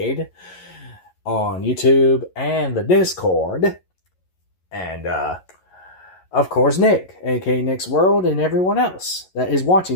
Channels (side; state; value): right; late; 11 ms